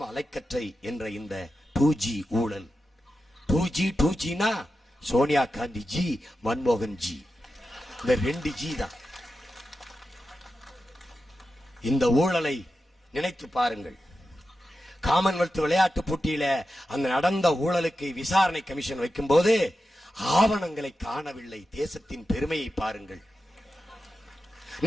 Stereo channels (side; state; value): both; normal; correlation 0.91